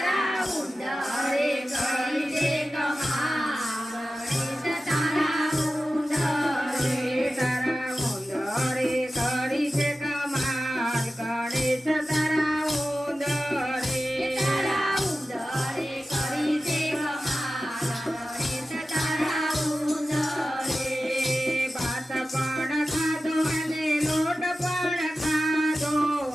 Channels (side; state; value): both; normal; correlation 0.94